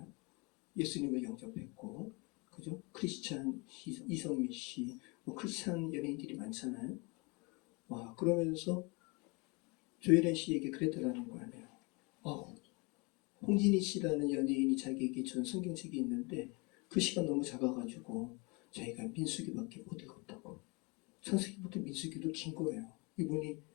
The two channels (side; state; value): right; quieter; 28.4 dB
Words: 예수님을 영접했고, 그죠? 크리스찬 이성미 씨, 뭐 크리스찬 연예인들이 많잖아요. 와, 그러면서 조혜련 씨에게 그랬다라는 거 아니에요. 홍진희 씨라는 연예인이 자기에게 준 성경책이 있는데 그 시간 너무 작아가지고 자기가 민수기밖에 못 읽었다고. 창세기부터 민수기도 긴 거예요. 이분이